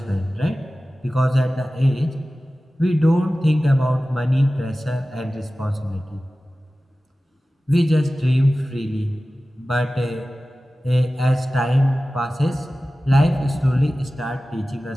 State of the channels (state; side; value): normal; both; correlation 0.96